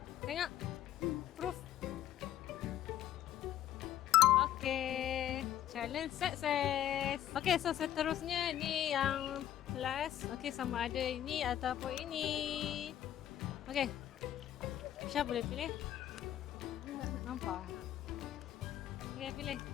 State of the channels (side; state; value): right; quieter; 11.9 dB